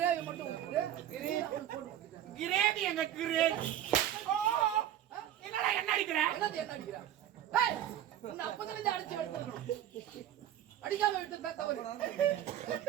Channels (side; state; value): left; quieter; 11.4 dB